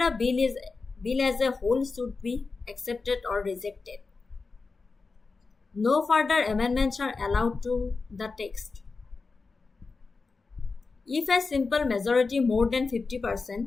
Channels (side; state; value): right; quieter; 4.2 dB